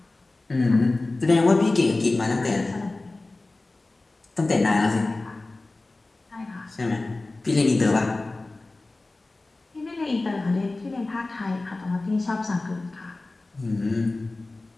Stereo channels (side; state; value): right; quieter; 3.1 dB